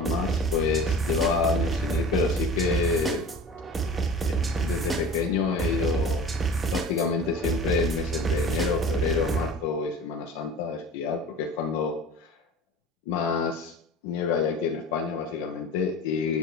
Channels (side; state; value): both; normal; correlation 0.37